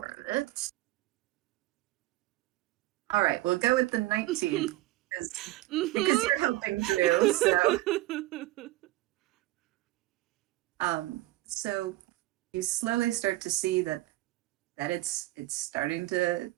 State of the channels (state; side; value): quieter; left; 17.7 dB